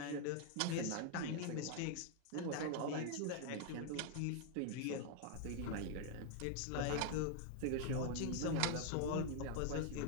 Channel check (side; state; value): both; different; correlation 0.00